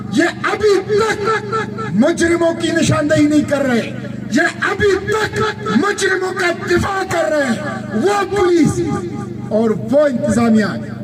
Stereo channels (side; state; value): both; identical; correlation 1.00